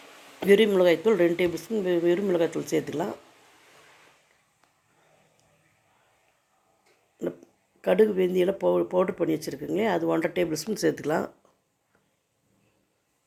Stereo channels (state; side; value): identical; both; correlation 1.00